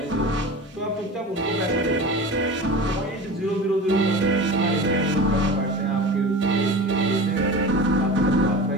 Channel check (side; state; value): both; normal; correlation 0.33